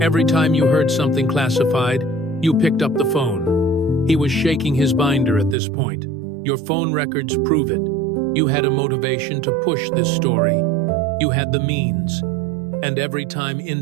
Every time you heard something classified, you picked up the phone. He was shaking his binder at this point. Your phone records prove it. You had a motivation to push this story. You had the means. And every time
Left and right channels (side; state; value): left; drops out; at 5.6 s